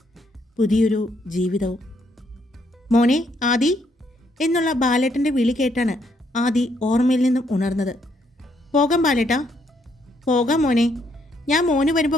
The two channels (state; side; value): normal; both; correlation 0.72